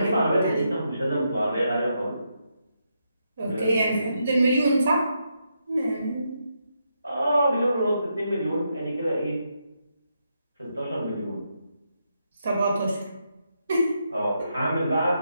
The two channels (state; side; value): inverted; both; correlation -0.81